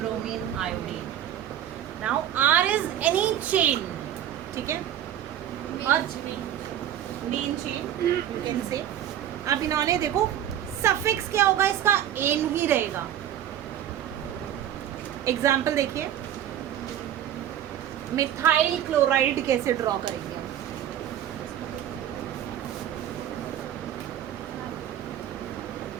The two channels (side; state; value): left; quieter; 10.9 dB